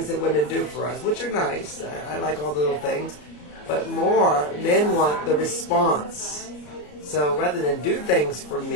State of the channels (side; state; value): right; late; 34 ms